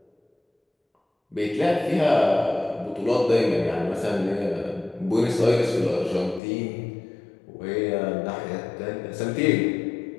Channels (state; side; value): drops out; right; at 6.4 s